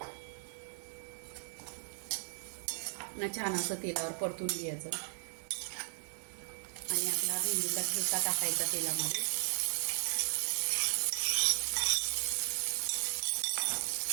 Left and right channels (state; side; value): silent; left; digital silence